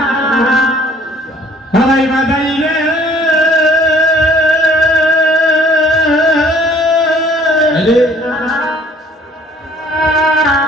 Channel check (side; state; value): both; normal; correlation 0.57